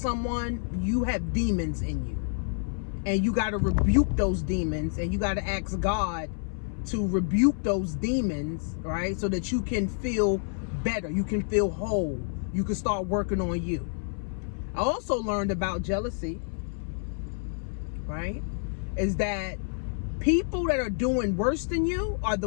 you have demons in you. And you got to rebuke those demons, and you got to ask God to rebuke those demons, right? So that you can feel better. You can feel whole. You can start working on you. I also learned about jealousy, right, is that people that are doing worse than you are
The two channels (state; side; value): silent; right; 59 dB below the other